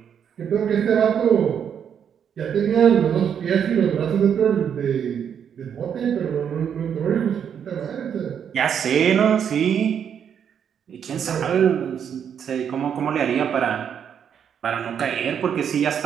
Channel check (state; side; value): quieter; left; 8.2 dB